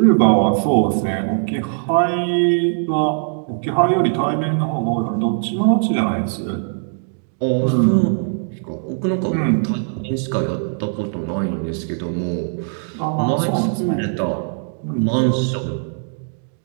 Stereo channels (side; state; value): left; silent; digital silence